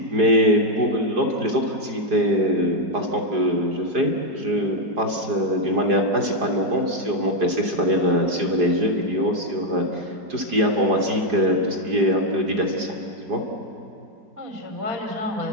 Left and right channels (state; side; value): late; left; 4.9 ms